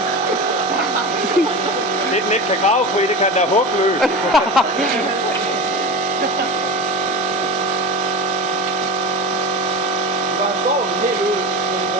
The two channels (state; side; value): normal; both; correlation 0.26